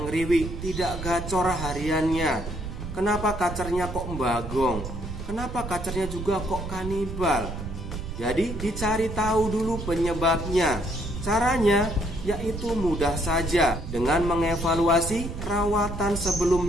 ngeriwik, tidak gacor hariannya? Kenapa kacernya kok bagong? Kenapa kacernya juga kok kanibal? Jadi dicari tahu dulu penyebabnya. Caranya yaitu mudah saja, dengan mengevaluasi rawatan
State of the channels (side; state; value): right; noise; rumble, 7 dB below the sound